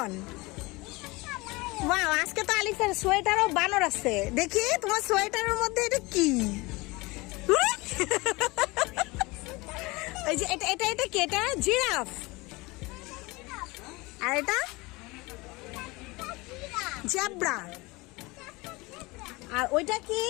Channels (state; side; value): quieter; right; 23.5 dB